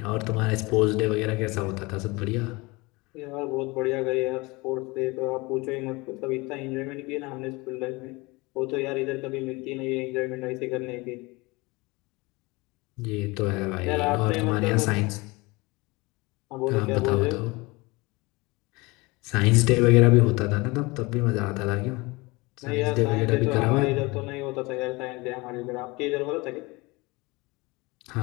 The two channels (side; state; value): right; quieter; 24.2 dB